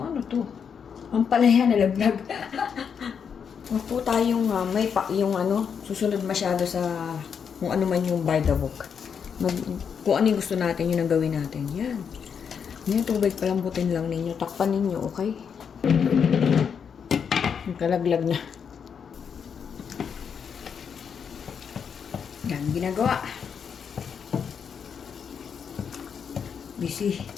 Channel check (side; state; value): right; quieter; 7.0 dB